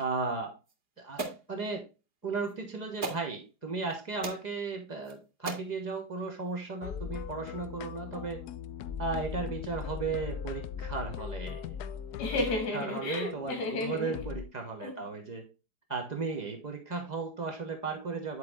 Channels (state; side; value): late; right; 4.8 ms